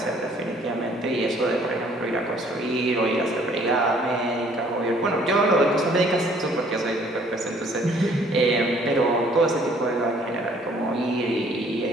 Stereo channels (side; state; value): both; normal; correlation 0.59